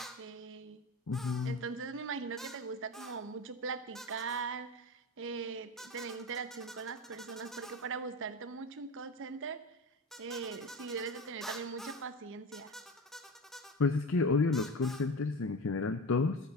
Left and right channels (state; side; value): normal; both; correlation 0.27